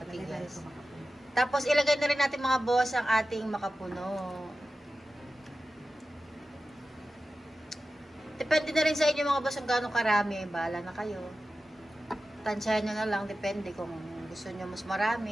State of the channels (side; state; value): both; normal; correlation 0.94